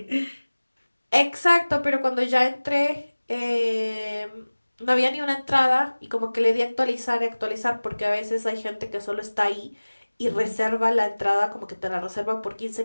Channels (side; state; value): both; inverted; correlation -1.00